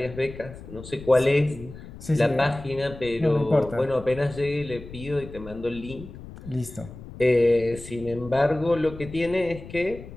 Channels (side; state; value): left; noise; rumble, 15 dB below the sound